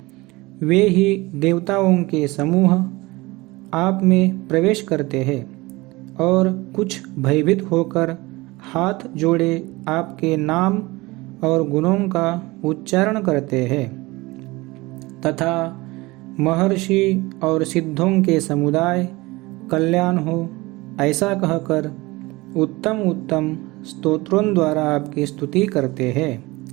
वे ही देवताओं के समूह आप में प्रवेश करते हैं और कुछ भयभीत होकर हाथ जोड़े आपके नाम और गुणों का उच्चारण करते हैं तथा महर्षि और सिद्धों के समुदाय कल्याण हो ऐसा कहकर उत्तम उत्तम स्तोत्रों द्वारा आपकी स्तुति करते हैं।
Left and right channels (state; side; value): quieter; left; 21.9 dB